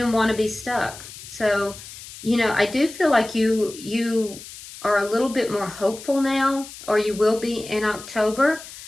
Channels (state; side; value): noise; left; hiss, 15 dB below the sound